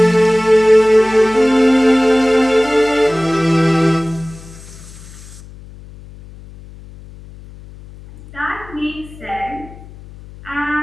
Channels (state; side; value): noise; left; hum, 19 dB below the sound